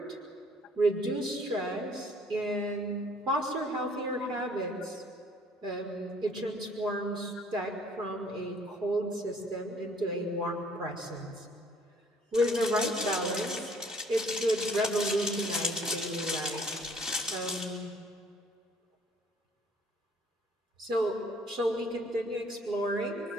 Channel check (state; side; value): normal; both; correlation 0.58